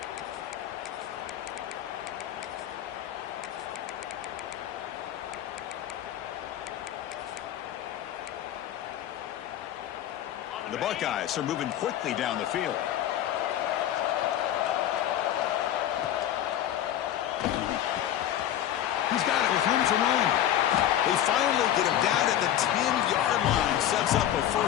The Buckeyes are moving quickly down the field. He's got it with room to run. They finally get him down at the 10-yard line. Sets up a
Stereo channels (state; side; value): quieter; right; 11.6 dB